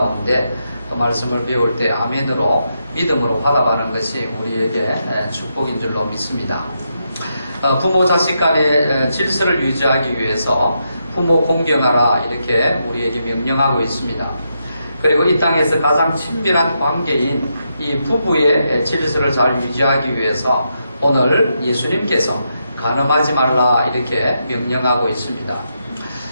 또 말씀을 배울 때 아멘으로 믿음으로 받아가는 것이 우리에게 축복인 줄로 믿습니다. 부모 자식 간의 질서를 유지하기 위해서 부모 공경하라 이렇게 우리에게 명령하고 있습니다. 그리고 이 땅에서 가장 친밀한 관계인 이 부부의 질서를 잘 유지하기 위해서 오늘 예수님께서 간음하지 말라 이렇게 명령하고 있습니다.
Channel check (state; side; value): inverted; both; correlation -0.82